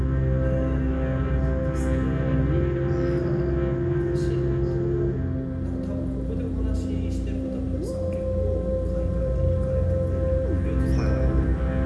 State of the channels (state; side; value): identical; both; correlation 1.00